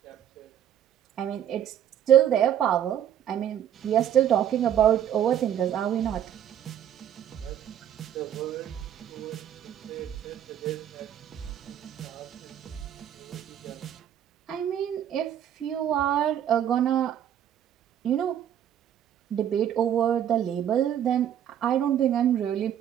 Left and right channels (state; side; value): quieter; left; 10.2 dB